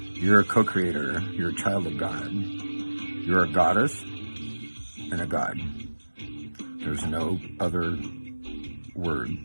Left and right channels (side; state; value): both; inverted; correlation -1.00